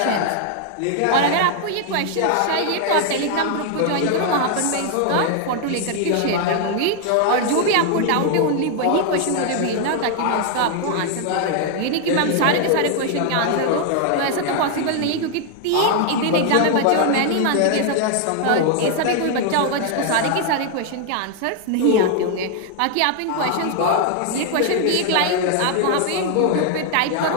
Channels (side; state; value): both; different; correlation 0.00